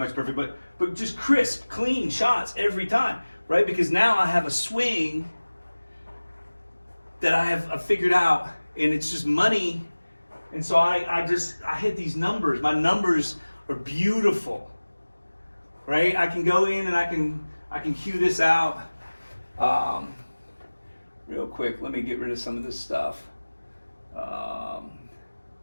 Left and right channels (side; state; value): both; inverted; correlation -1.00